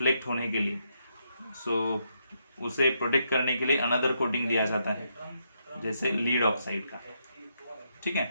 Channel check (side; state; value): both; inverted; correlation -0.78